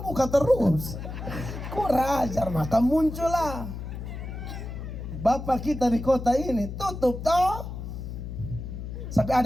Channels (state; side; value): noise; left; hum, 8 dB below the sound